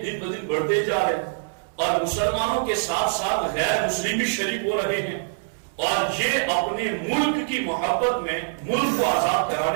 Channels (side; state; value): left; silent; digital silence